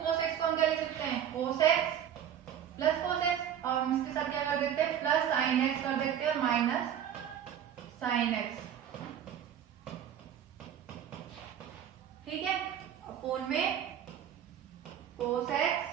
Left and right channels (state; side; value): quieter; left; 9.6 dB